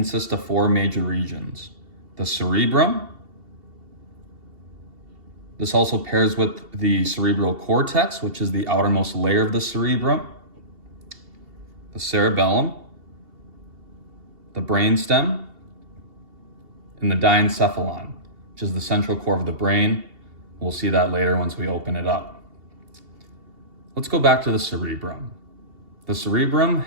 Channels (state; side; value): late; left; 2.7 ms